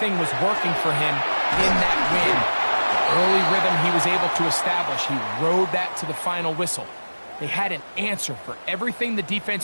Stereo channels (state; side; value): inverted; both; correlation -1.00